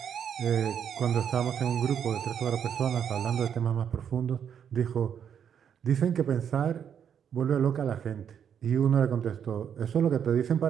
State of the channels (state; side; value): quieter; left; 8.3 dB